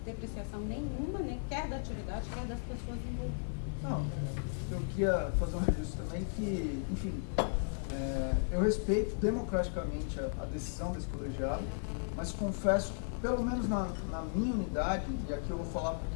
depreciação nenhuma, nem quer da atividade, quer das pessoas envolvidas. Não, eu queria fazer um registro também que, enfim, eu respeito democraticamente a decisão desse colegiado, mas confesso que, pelo menos na minha unidade, e aqui eu vou falar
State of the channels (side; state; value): right; silent; 54 dB below the other